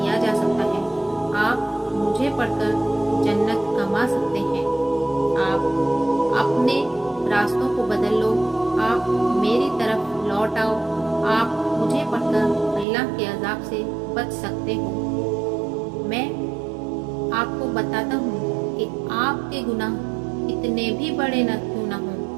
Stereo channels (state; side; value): drops out; left; at 12.9 s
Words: جا سکتا ہے۔ آپ مجھے پڑھ کر جنت کما سکتے ہیں۔ آپ اپنے راستوں کو بدل لو، آپ میری طرف لوٹ آؤ، آپ مجھے پڑھ کر اللہ کے عذاب سے بچ سکتے ہو۔ میں آپ کو بتاتا ہوں کہ آپ کے گناہ کتنے بھی بڑے نہ کیوں نہ ہوں،